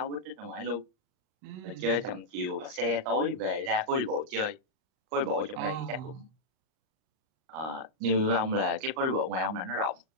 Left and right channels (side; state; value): left; late; 38 ms